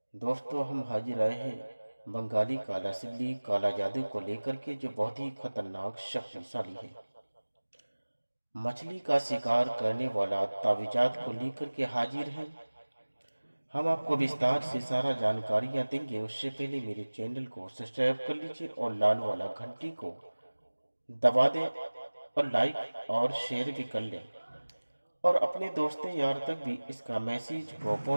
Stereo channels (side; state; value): both; inverted; correlation -1.00